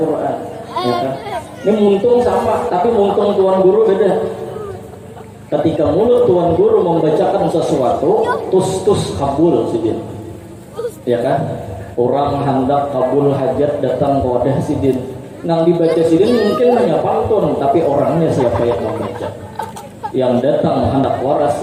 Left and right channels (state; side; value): identical; both; correlation 1.00